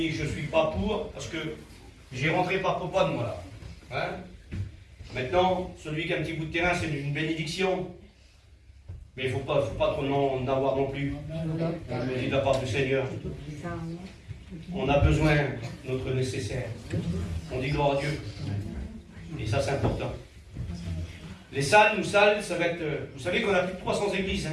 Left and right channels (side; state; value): both; identical; correlation 1.00